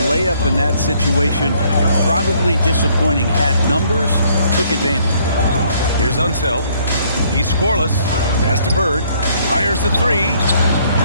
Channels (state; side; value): inverted; both; correlation -0.65